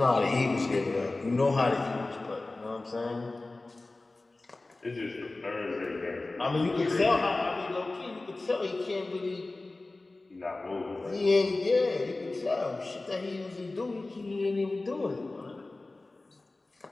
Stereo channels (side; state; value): right; quieter; 3.1 dB